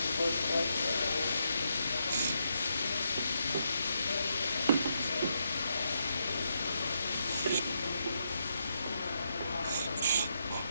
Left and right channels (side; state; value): both; inverted; correlation -0.80